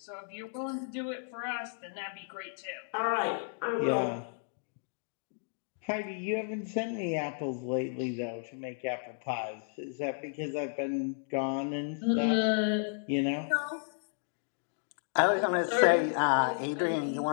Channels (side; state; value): right; silent; digital silence